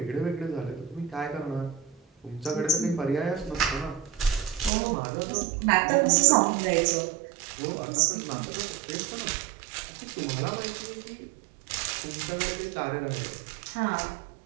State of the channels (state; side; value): drops out; left; at 4.7 s